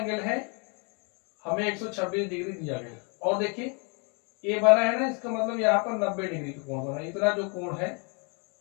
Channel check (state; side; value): quieter; right; 35.3 dB